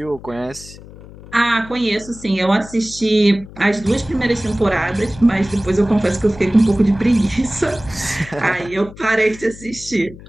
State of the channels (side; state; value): left; noise; hum, 18 dB below the sound